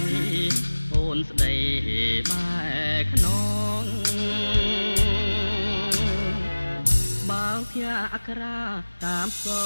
អូនស្ដីបែខ្នងបើភ័ក្រអក្រាតាមស្គ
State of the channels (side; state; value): both; inverted; correlation -1.00